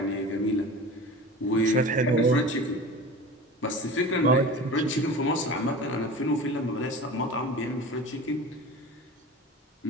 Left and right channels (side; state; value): both; normal; correlation 0.35